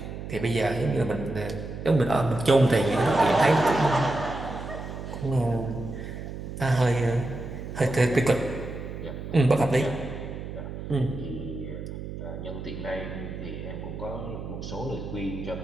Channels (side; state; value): right; noise; hum, 8 dB below the sound